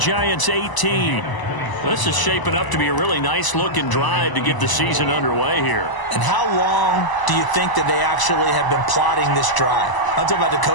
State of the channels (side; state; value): right; late; 1.0 ms